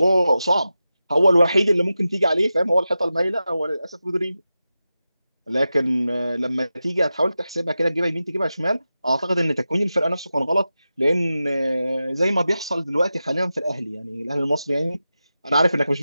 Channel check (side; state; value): both; inverted; correlation -0.92